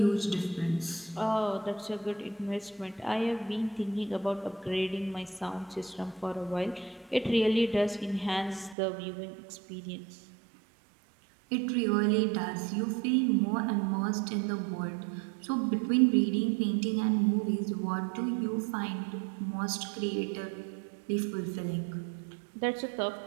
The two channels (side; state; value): left; drops out; at 8.8 s